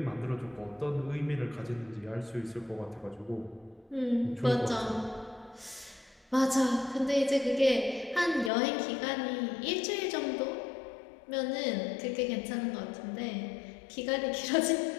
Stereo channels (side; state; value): right; drops out; at 8.5 s